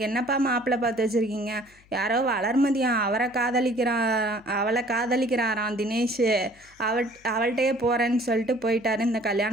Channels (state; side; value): noise; left; hum, 29 dB below the sound